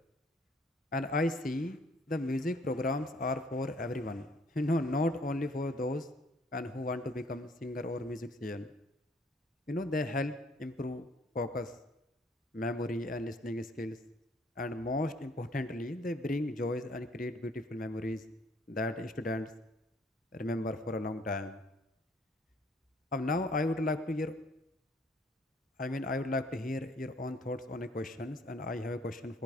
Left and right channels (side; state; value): both; normal; correlation 0.61